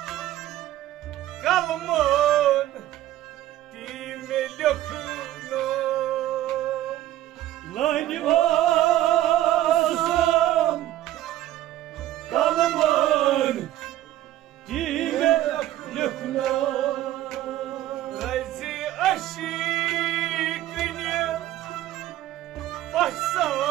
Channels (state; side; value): quieter; left; 13.9 dB